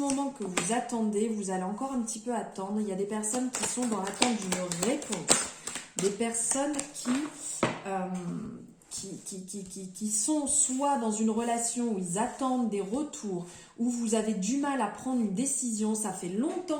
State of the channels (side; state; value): both; identical; correlation 1.00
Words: que vous attendez, vous allez encore un petit peu attendre. Il y a des personnes qui sont dans l'attente d'une réponse. Des personnes qui sont soit dans une relation où ils attendent des retours, où vous avez du mal à prendre une décision, ça fait